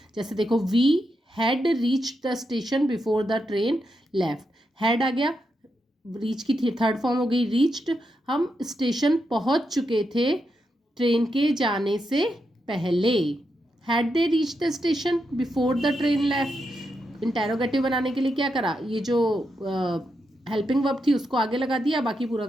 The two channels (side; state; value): both; normal; correlation 0.84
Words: जैसे देखो we had reached the station before the train left, had आ गया, रीच की थर्ड फॉर्म हो गई रीच्ड, हम स्टेशन पहुंच चुके थे ट्रेन के जाने से पहले। Had they reach the station before the train left, interrogative बनाने के लिए क्या करा, ये जो हेल्पिंग वर्ब थी उसको आगे लगा दिया, बाकी पूरा